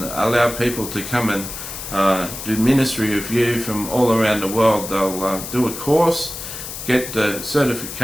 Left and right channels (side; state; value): left; noise; hiss, 9 dB below the sound